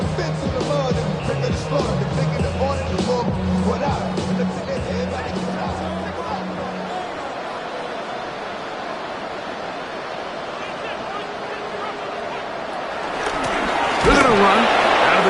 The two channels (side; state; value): both; identical; correlation 1.00